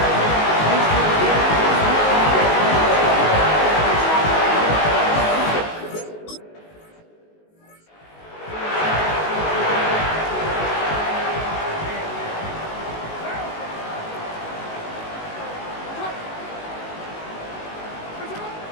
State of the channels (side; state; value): right; late; 19 ms